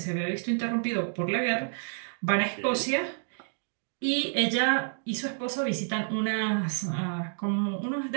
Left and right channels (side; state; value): left; silent; digital silence